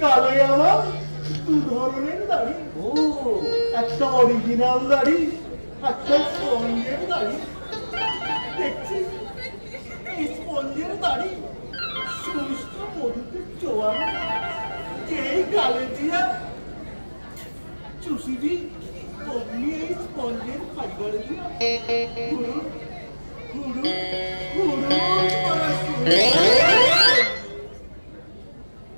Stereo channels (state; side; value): inverted; both; correlation -1.00